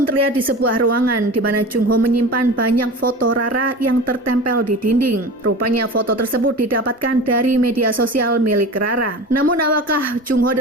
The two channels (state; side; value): normal; both; correlation 0.33